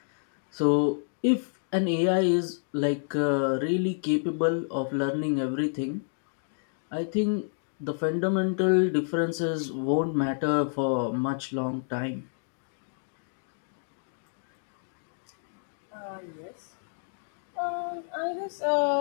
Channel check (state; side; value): silent; right; digital silence